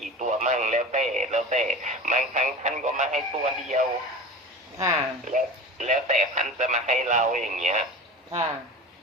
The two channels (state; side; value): normal; both; correlation 0.32